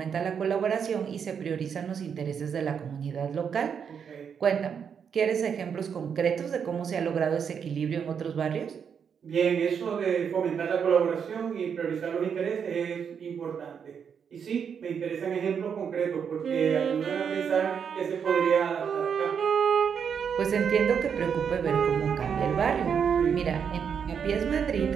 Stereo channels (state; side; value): quieter; left; 7.1 dB